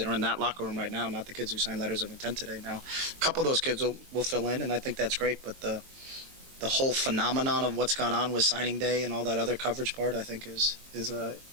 are in that locker room right now, not the kids who signed letters of intent today. Now, a couple of those kids will fill in, and I think that's great, but the whole phenomenon of what's gone on with signing day and all that other coverage part, I think is a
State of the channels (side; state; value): left; late; 22 ms